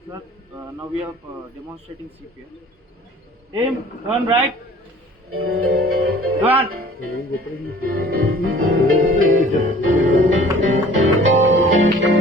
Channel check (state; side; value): normal; both; correlation 0.49